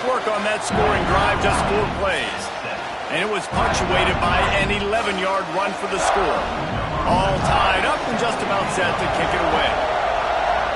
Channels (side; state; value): both; identical; correlation 1.00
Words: work on that scoring drive, just 4 plays. And it was punctuated by an 11-yard run for the score. All tied up and just about set to kick it away.